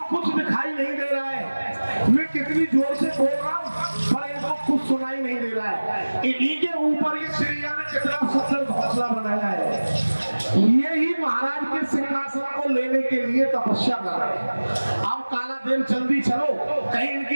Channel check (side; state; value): both; inverted; correlation -1.00